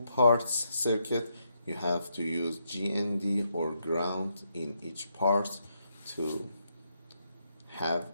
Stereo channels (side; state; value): both; inverted; correlation -0.79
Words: parts circuit, you have to use GND or ground in each part to have